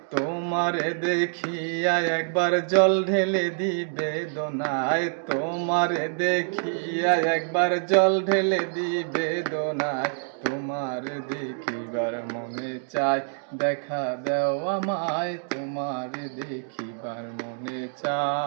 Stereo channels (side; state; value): left; silent; digital silence